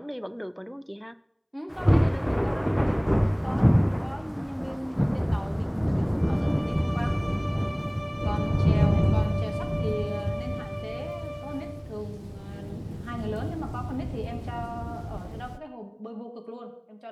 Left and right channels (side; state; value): both; identical; correlation 1.00